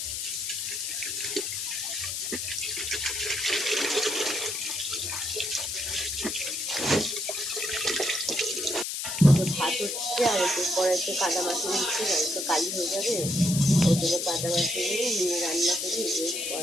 ভাত হচ্ছে আর একটু পরে একটু কাদা মাছি দিচ্ছি, তো কালি হয়ে যাবে। ওই জন্য কাদা মাছিগুলো নিয়ে রান্না করি, ওই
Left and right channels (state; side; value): noise; left; hiss, 3 dB below the sound